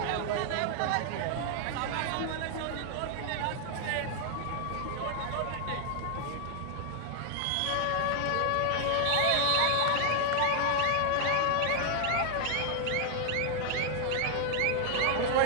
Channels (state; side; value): different; both; correlation 0.00